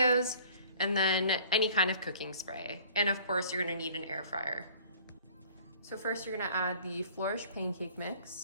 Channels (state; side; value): inverted; both; correlation -0.51